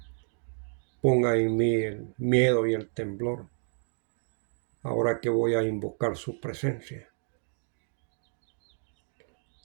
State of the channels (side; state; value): left; silent; 58 dB below the other